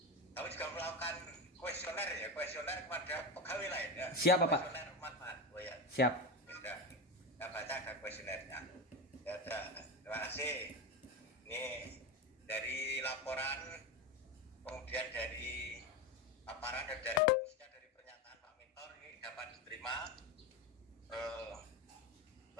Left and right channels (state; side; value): normal; both; correlation 0.18